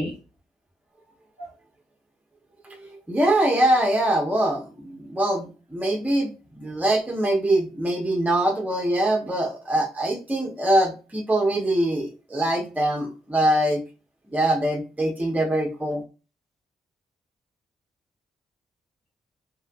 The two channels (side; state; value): both; normal; correlation 0.79